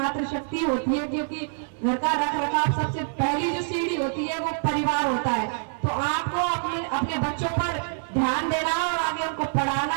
होती है, क्योंकि घर का रख रखाव सबसे पहली जो सीढ़ी होती है वो परिवार होता है। तो आपको अपने बच्चों पर ध्यान देना और आगे उनको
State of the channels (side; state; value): left; silent; 59 dB below the other